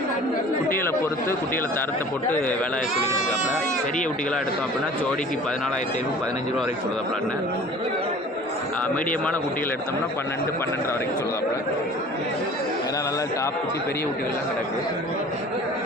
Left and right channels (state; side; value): normal; both; correlation 0.45